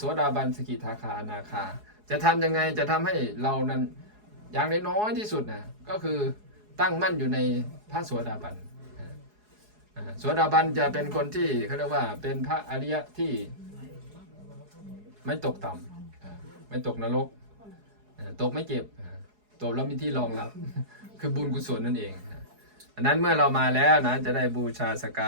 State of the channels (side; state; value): left; late; 4.8 ms